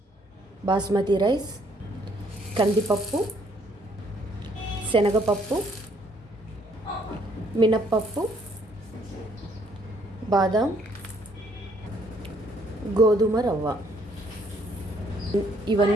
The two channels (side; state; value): both; normal; correlation 0.66